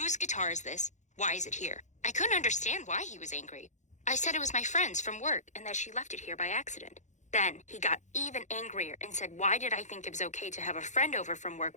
guitar is this? Why is it here?" I couldn't understand why he was angry. I said it was my friend's from work and that she left it here by accident. Then he got even angrier and said, why did I think it was okay to have a friend over from work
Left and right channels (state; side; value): late; right; 0.35 ms